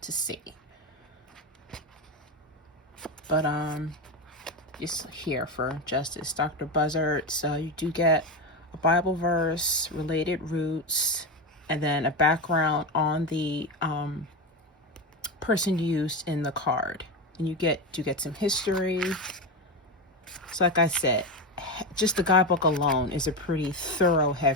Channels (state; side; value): normal; both; correlation 0.16